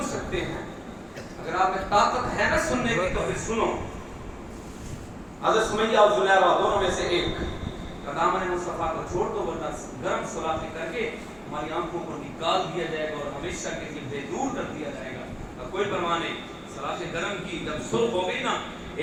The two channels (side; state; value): both; identical; correlation 1.00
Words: سکتے ہیں، اگر آپ میں طاقت ہے نا سننے کی تو پھر سنو۔ حضرت سمیہ اور زلیخا دونوں میں سے ایک دامن مصطفیٰ کو چھوڑ دو ورنہ گرم سلاخیں کر کے ہماری آنکھوں کو نکال دیا جائے گا اور ہمیشہ کے لیے بے دور کر دیا جائے گا۔ کوئی پرواہ نہیں، سلاخیں گرم کی جب سرخ ہو گئی نا،